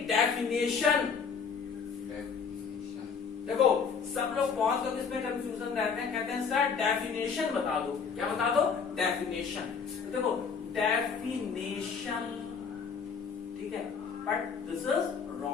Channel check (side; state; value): right; quieter; 5.9 dB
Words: डेफिनेशन देखो, सब लोग, बहुत लोग इसमें कंफ्यूजन रहते हैं, कहते हैं सर डेफिनेशन बता दो। क्या बता दो? डेफिनेशन। तो देखो, डेफिनेशन ठीक है, बट दिस इज